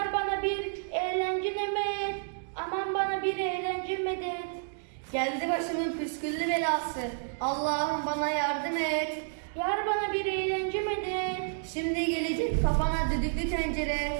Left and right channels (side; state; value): left; silent; digital silence